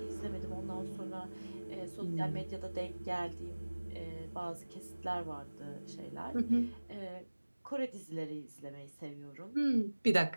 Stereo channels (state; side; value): inverted; both; correlation -1.00